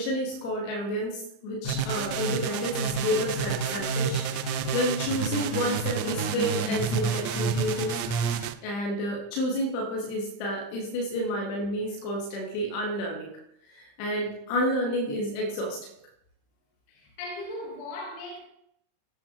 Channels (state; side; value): late; right; 35 ms